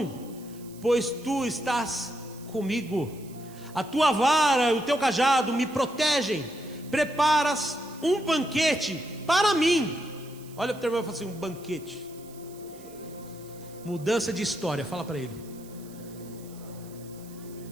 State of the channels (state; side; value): noise; right; hiss, 22 dB below the sound